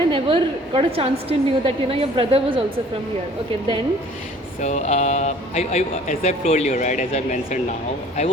I never got a chance to know that, your brother was also from here. Okay, then. So as I've told you, right, as I mentioned now, I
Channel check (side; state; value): both; normal; correlation 0.52